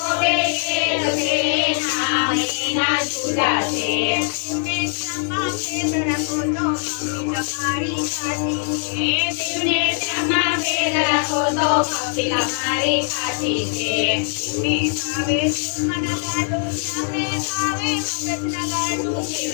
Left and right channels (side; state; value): right; silent; 65 dB below the other